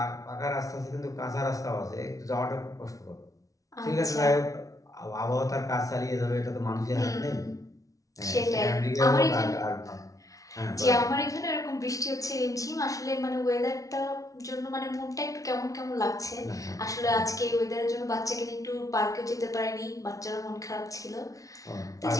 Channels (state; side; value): late; right; 0.17 ms